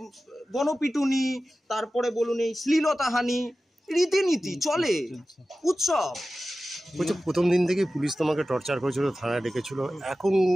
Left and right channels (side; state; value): both; normal; correlation 0.95